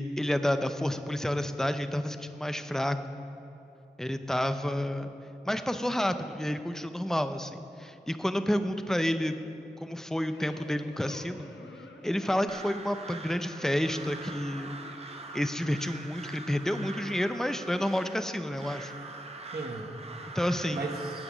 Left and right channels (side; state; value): both; normal; correlation 0.93